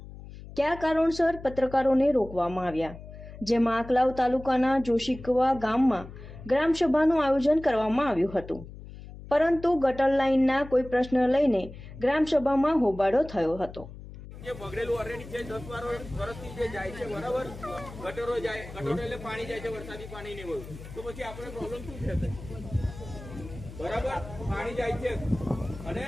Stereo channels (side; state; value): left; noise; hum, 14 dB below the sound